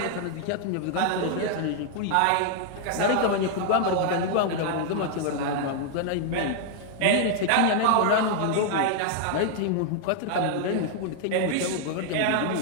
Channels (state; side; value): different; both; correlation 0.00